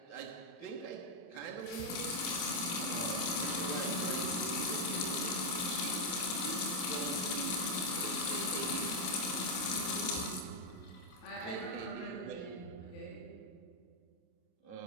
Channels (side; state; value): right; late; 27 ms